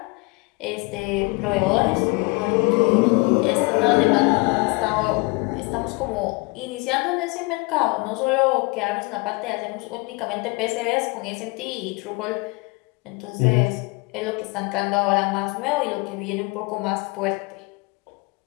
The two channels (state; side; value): quieter; right; 27.0 dB